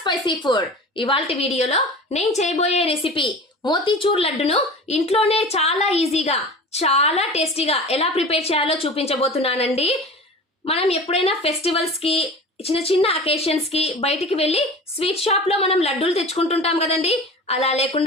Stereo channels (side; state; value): both; normal; correlation 0.36